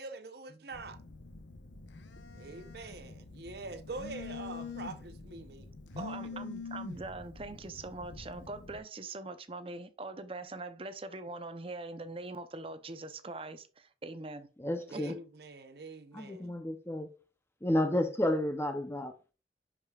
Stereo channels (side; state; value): both; normal; correlation 0.65